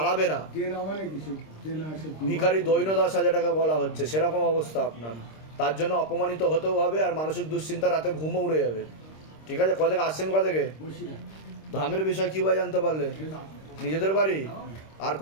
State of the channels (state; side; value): late; right; 26 ms